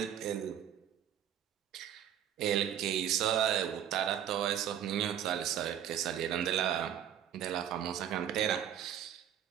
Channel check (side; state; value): left; quieter; 10.1 dB